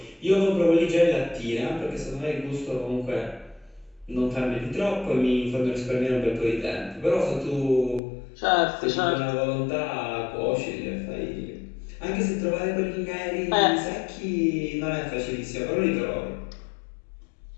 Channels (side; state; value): right; drops out; at 8.0 s